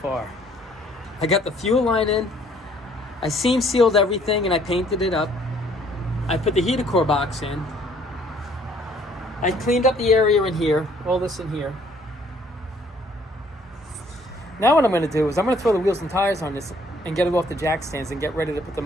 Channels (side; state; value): both; normal; correlation 0.61